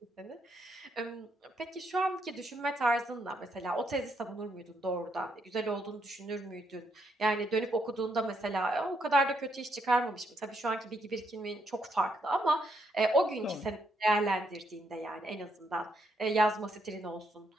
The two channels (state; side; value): normal; both; correlation 0.75